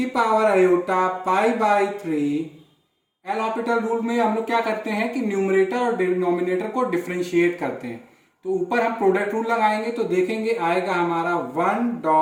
power iota pi by 3, L'Hopital rule में हम लोग क्या करते हैं कि न्यूमरेटर और डिनोमिनेटर को डिफरेंशिएट करते हैं। तो ऊपर हम प्रोडक्ट रूल लगाएंगे तो देखेंगे आएगा हमारा 1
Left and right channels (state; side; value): identical; both; correlation 1.00